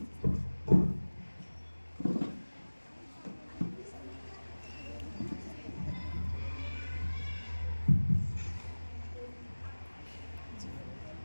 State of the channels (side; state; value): both; inverted; correlation -1.00